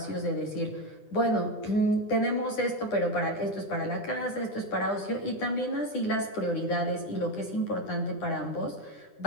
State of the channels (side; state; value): right; late; 9.8 ms